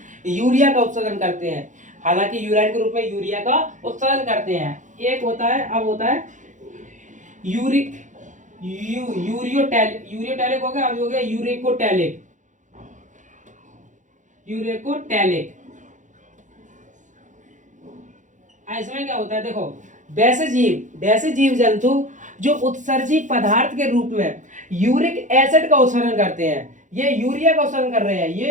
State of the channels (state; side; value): late; left; 0.36 ms